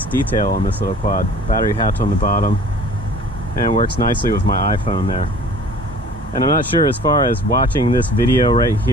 detail on this little quad. Battery hatch on the bottom, and it works nicely with my iPhone there. And I'm not sure as far as watching this video right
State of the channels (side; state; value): both; normal; correlation 0.48